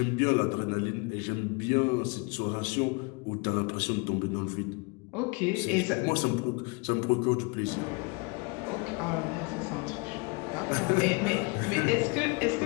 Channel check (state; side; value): quieter; right; 30.5 dB